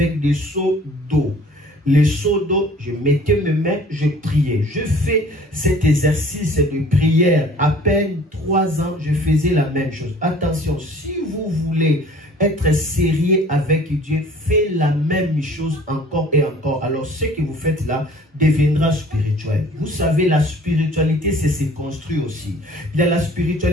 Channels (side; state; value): both; normal; correlation 0.50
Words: des seaux d'eau. Les seaux d'eau, je mettais mes mains, je priais. Je fais cet exercice de prière. À peine 3 ans, je faisais la même chose. Attention, si vous voulez être sérieux avec Dieu, faites la même chose encore et encore. Alors, ce que vous faites là deviendra spirituel. Vous savez, la spiritualité, c'est se construire aussi. Il y a la